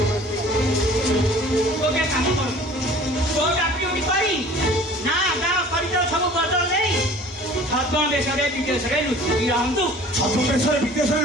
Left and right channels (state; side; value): normal; both; correlation 0.47